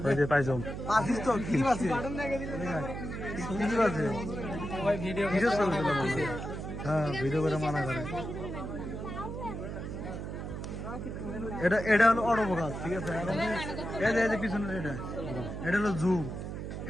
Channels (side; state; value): right; noise; hum, 6 dB below the sound